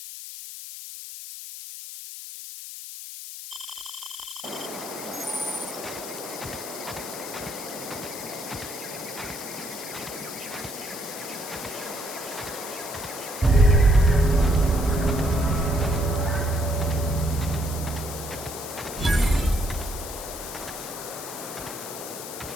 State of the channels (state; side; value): noise; left; hiss, 10 dB below the sound